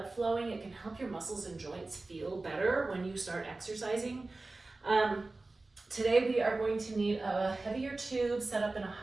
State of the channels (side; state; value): left; quieter; 3.2 dB